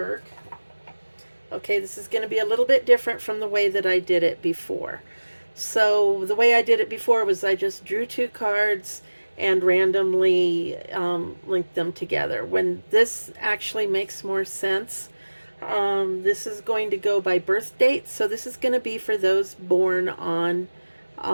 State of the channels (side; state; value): both; inverted; correlation -1.00